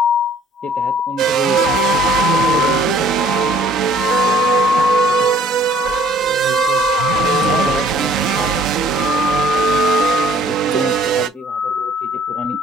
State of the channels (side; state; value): both; normal; correlation 0.56